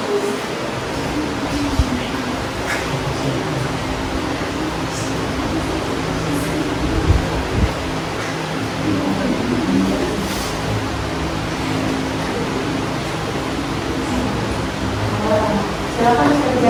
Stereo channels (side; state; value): both; identical; correlation 1.00